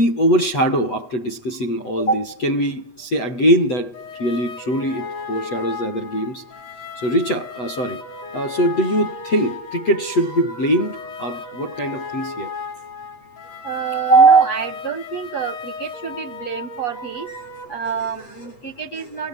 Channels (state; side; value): late; right; 8.2 ms